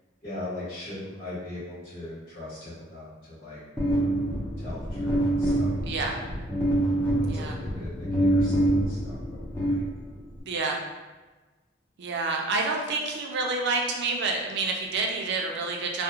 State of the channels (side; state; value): both; normal; correlation 0.52